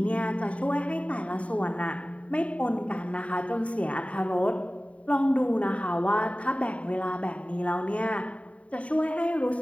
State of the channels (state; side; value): late; right; 0.065 ms